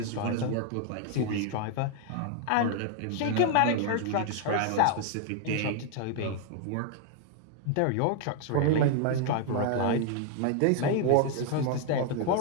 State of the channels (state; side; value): different; both; correlation 0.00